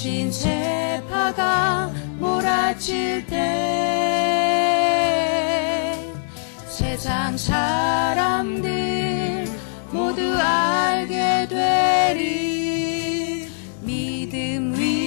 세파가 몰아칠 때 세상 사람들 모두 알게 되리. 믿음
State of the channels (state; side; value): silent; right; digital silence